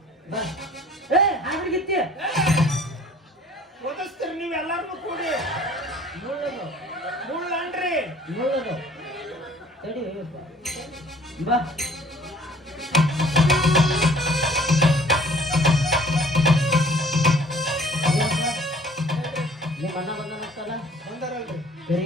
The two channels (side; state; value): both; normal; correlation 0.53